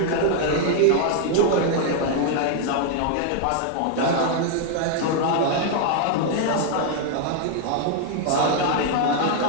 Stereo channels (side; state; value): both; different; correlation 0.00